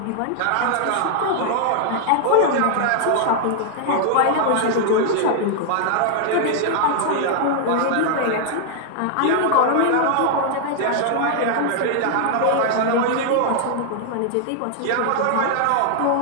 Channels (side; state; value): both; different; correlation 0.00